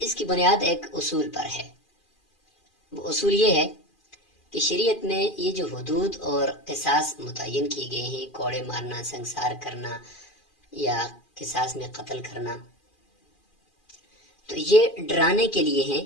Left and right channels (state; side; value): late; right; 2.4 ms